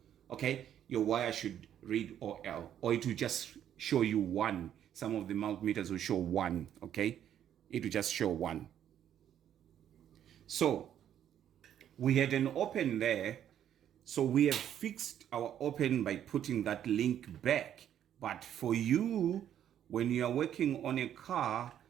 Okay, your wire should read OL, or it will just show you 1. Some of the multimeters will show 1. Okay, it will just show 1. So we had an open there. So we have fixed our open by putting that link back. But for you, when you are working on a car,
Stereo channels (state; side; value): quieter; left; 10.2 dB